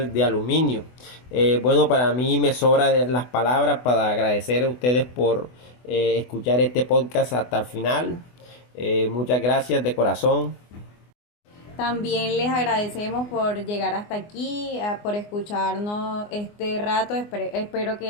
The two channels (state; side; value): late; right; 24 ms